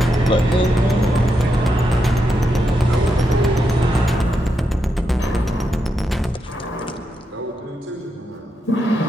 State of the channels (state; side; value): normal; both; correlation 0.84